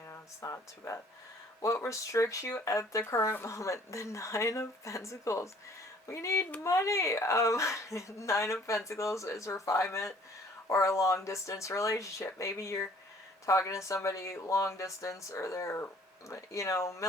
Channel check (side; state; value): both; normal; correlation 0.56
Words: it's not too bad. What restricts you at the current moment? The Nine of Pentacles. We need money. Nine of Pentacles is refinement or a long distance relationship. Maybe you're talking to somebody long distance, or they're